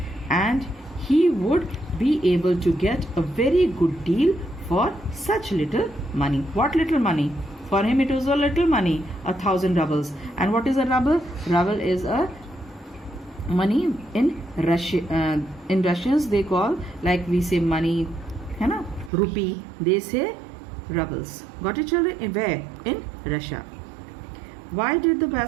And he would be able to get a very good deal for such little money. What little money? For him it was a little money, 1,000 rubles. And what is a ruble? Ruble is a money in Russia. In Russians they call, like we say money, है ना, rupee. They say rubles. Got it children? Where? In Russia. Why did the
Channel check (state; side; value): drops out; left; at 19.1 s